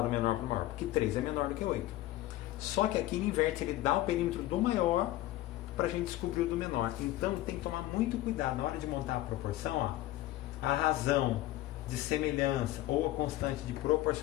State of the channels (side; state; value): right; quieter; 15.8 dB